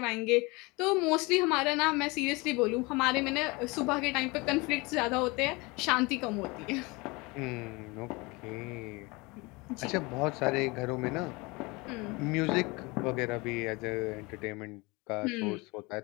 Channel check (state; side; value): quieter; right; 25.5 dB